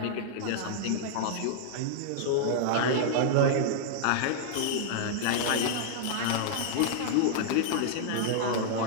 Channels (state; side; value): different; both; correlation -0.01